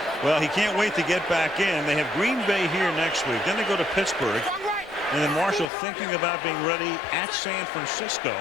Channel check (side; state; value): right; drops out; at 5.7 s